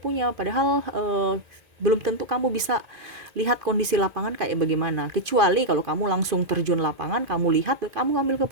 padahal belum tentu kamu bisa lihat kondisi lapangan kayak bagaimana, kecuali kalau kamu langsung terjun lapangan, kamu lihat, kamu ngambil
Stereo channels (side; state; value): left; late; 2.5 ms